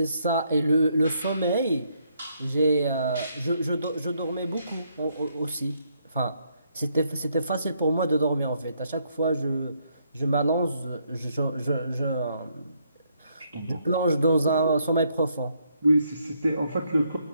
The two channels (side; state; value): both; inverted; correlation -0.74